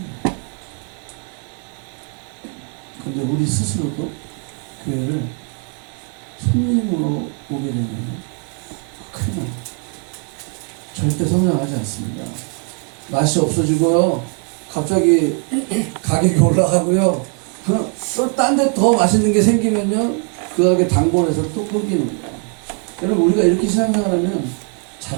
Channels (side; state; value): left; quieter; 39.7 dB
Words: 근데 우리 스스로도 교회를 손님으로 오게 되면 큰일 납니다. 절대 성장하지 않습니다. 맛이 없어지고요. 갑자기 가격이 올라가고요. 또 딴 데 더 맛있는 게 생기면요. 그 가게 단골에서 또 끊기는 거예요. 여러분, 우리가 이렇게 신앙생활하면